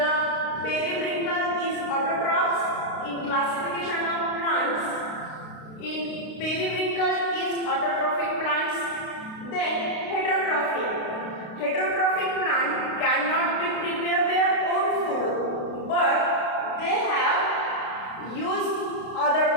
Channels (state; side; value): late; right; 32 ms